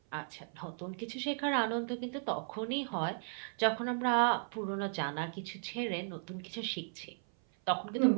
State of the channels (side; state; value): left; silent; 54 dB below the other